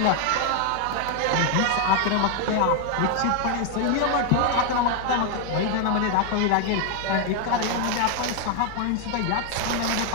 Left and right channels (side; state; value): both; different; correlation 0.00